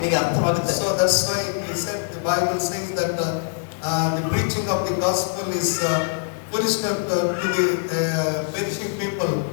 ಅರ್ಥವಾಗುತ್ತೆ. So that's why he said, the Bible says that the preaching of the gospel is foolishness to the perishing people,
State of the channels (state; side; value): silent; right; 63 dB below the other